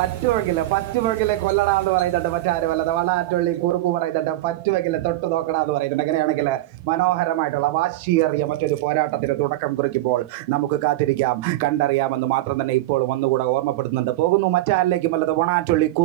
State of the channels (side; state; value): left; quieter; 16.5 dB